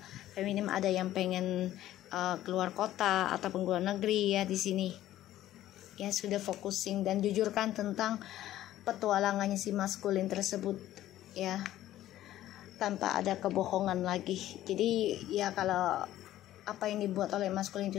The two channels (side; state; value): right; quieter; 13.6 dB